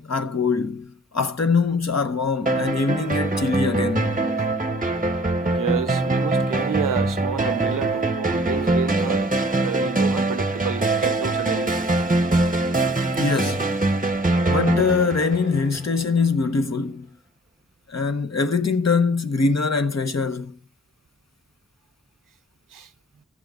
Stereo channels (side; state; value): both; normal; correlation 0.52